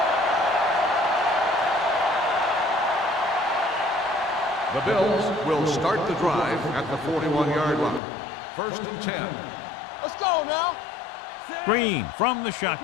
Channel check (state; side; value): drops out; right; at 8.0 s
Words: The Bills will start the drive at the 41-yard line. 1st and 10. Let's go now. Green from the Let's do our